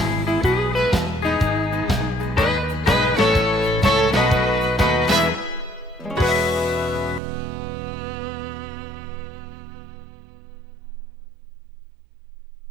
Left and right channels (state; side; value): drops out; left; at 7.2 s